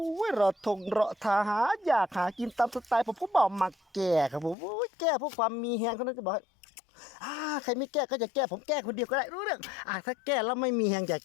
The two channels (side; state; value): right; drops out; at 4.5 s